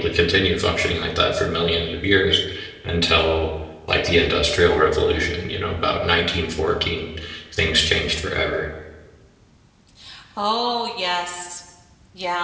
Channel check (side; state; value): both; identical; correlation 1.00